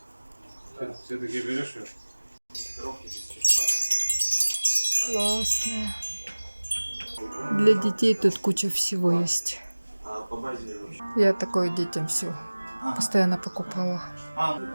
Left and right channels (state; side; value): inverted; both; correlation -1.00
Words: Все-таки берешь ее? Коробки без чехла. Классная. Для детей тут куча всего есть. А по базе вообще? Я такое детям все постоянно покупала.